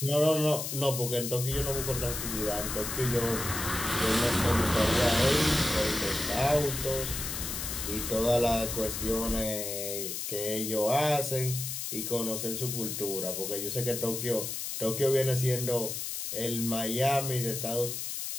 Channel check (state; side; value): noise; left; hiss, 4 dB below the sound